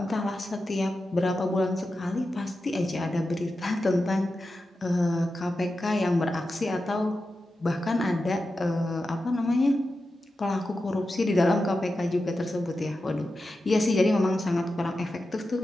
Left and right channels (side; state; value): both; normal; correlation 0.91